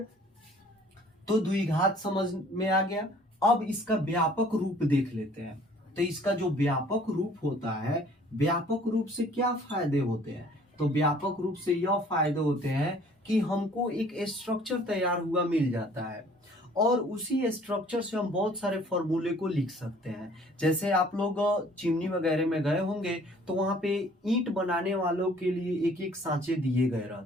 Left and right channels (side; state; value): both; normal; correlation 0.55